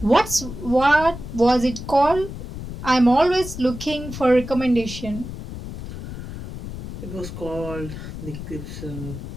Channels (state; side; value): noise; left; rumble, 10 dB below the sound